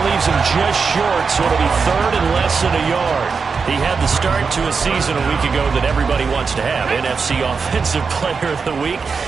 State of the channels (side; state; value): left; quieter; 5.2 dB